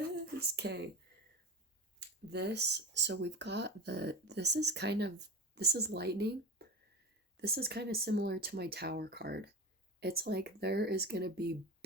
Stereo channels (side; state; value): both; normal; correlation 0.29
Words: Okay, so we've got this is lightning. This is kind of similar to my Tower card. It's like there is gonna be